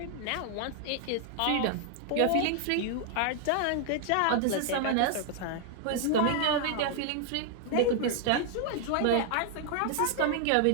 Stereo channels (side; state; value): both; different; correlation 0.00